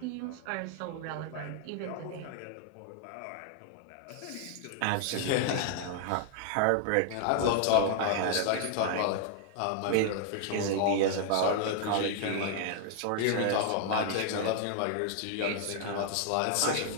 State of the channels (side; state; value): both; different; correlation 0.00